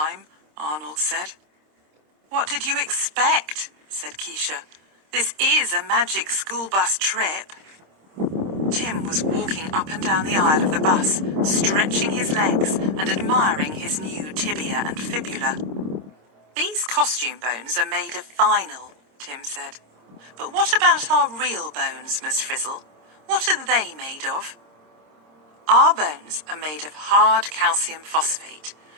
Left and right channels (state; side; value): late; left; 26 ms